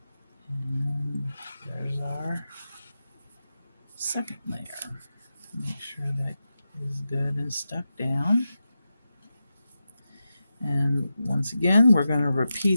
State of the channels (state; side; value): inverted; both; correlation -0.90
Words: And there's our second layer. Make sure that is good and stuck down. And once again, we're going to